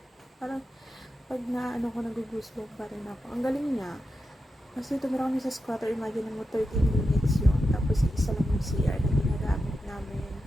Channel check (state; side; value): normal; both; correlation 0.89